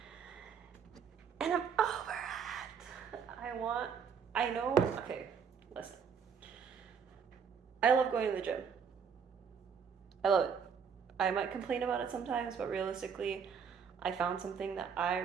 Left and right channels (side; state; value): left; quieter; 6.7 dB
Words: and I'm over it. I know, okay, listen. I love going to the gym. I love it. I might complain about it sometimes, but realistically, I found something that I